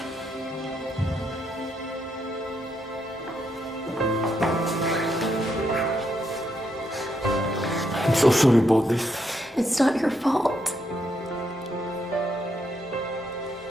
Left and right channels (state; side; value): normal; both; correlation 0.78